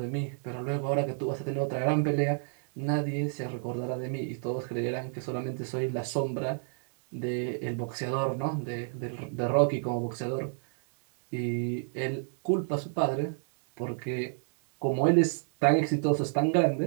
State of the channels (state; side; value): silent; left; digital silence